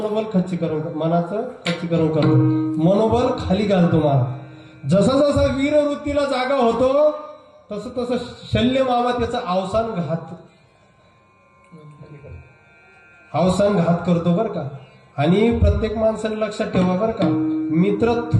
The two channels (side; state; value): both; identical; correlation 1.00